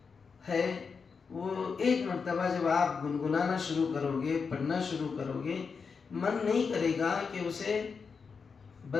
ہے، وہ ایک مرتبہ جب آپ گنگنانا شروع کرو گے، پڑھنا شروع کرو گے، من نہیں کرے گا کہ اسے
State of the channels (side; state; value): right; quieter; 5.4 dB